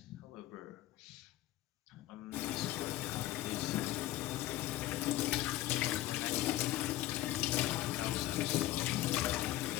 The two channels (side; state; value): right; quieter; 15.4 dB